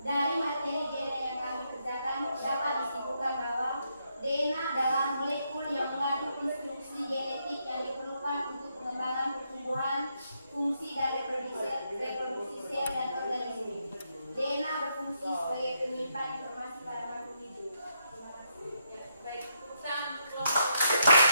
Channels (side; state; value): both; inverted; correlation -0.78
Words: Dari materi DNA yang kami kerjakan dapat disimpulkan bahwa DNA adalah molekul yang mengandung instruksi genetik yang diperlukan untuk